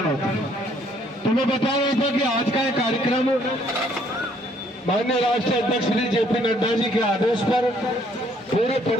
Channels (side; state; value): both; normal; correlation 0.65